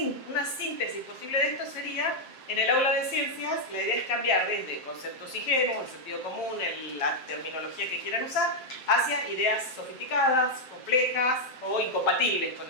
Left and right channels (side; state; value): right; late; 7.7 ms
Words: una síntesis posible de esto sería, en el aula de ciencias, la idea es cambiar desde conceptos ingenuos, el sentido común, la terminología que quieran usar, hacia ideas sofisticadas, complejas o incompatibles con